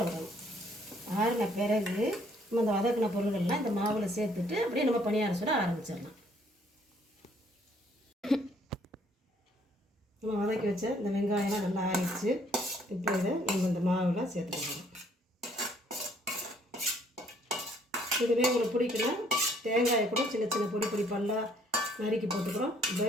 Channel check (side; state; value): both; normal; correlation 0.64